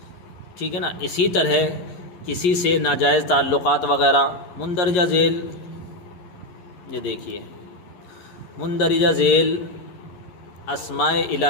ٹھیک ہے نا۔ اسی طرح کسی سے ناجائز تعلقات وغیرہ مندرجہ ذیل، یہ دیکھیے، مندرجہ ذیل اسماء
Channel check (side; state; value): right; late; 11 ms